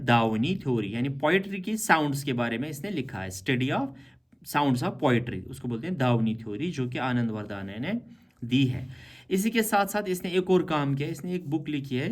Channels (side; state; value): both; identical; correlation 1.00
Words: दावनी थ्योरी, यानी पोइट्री की साउंड्स के बारे में इसने लिखा है, study of sounds of poetry, उसको बोलते हैं दावनी थ्योरी, जो कि आनंद वरदाना ने दी है। इसी के साथ साथ इसने एक और काम किया, इसने एक बुक लिखी